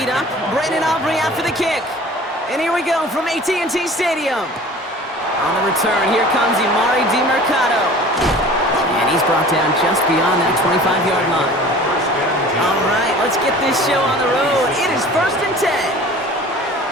up. Brandon Aubrey out for the kick. And here we go from AT&T Stadium. On the return, here comes Emari Demercado. And he's brought down just beyond that 25-yard line. All right, let's get this show on the road. It is 1st and 10.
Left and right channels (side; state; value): both; normal; correlation 0.44